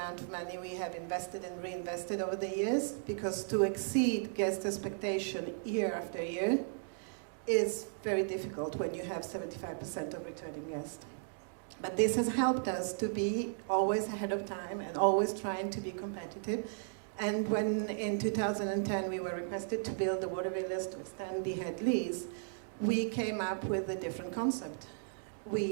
of money we have invested and reinvested over the years, because to exceed guest expectation year after year is very difficult when you have 75% of returning guests. But this has helped us to be always ahead of time and always trying to be competitive. And when in 2010 we were requested to build the water villas to extend the head lease, we came up with a different concept.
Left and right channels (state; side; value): silent; left; digital silence